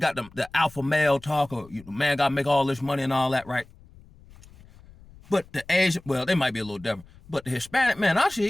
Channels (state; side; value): noise; left; rumble, 24 dB below the sound